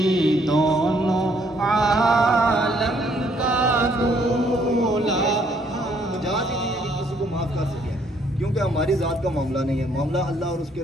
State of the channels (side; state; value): both; normal; correlation 0.67